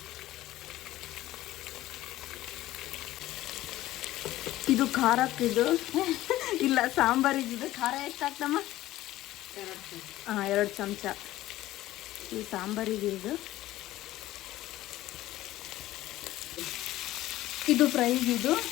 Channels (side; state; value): right; quieter; 15.6 dB